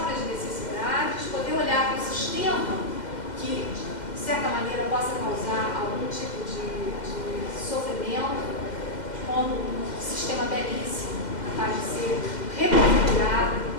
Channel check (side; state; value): right; late; 2.0 ms